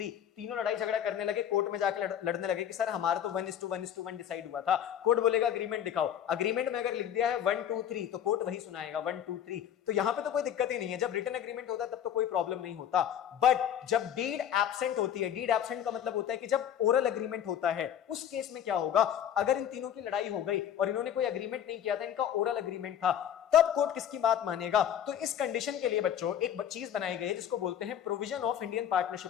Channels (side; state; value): right; quieter; 9.7 dB